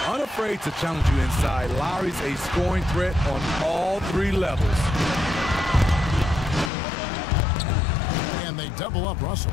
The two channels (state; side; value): drops out; right; at 6.7 s